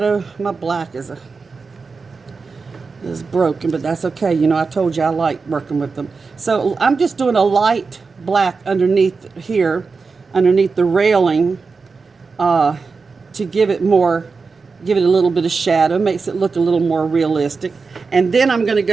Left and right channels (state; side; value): quieter; left; 4.6 dB